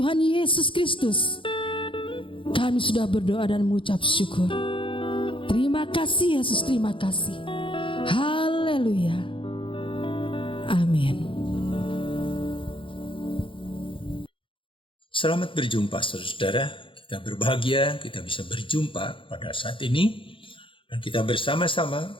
Yesus Kristus kami sudah berdoa dan mengucap syukur. Terima kasih Yesus, terima kasih. Haleluya. Amin. Selamat berjumpa saudara. Kita berbahagia kita bisa berjumpa pada saat ini, dan kita bersama-sama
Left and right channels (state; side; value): late; right; 0.25 ms